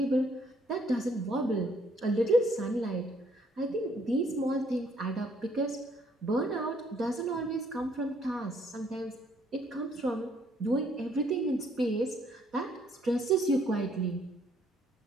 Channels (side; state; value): both; normal; correlation 0.66